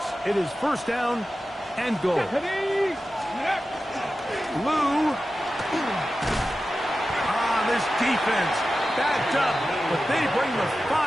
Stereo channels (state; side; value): normal; both; correlation 0.93